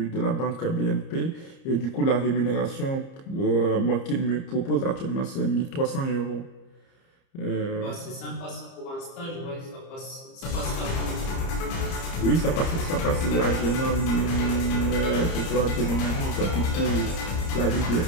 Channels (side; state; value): right; late; 30 ms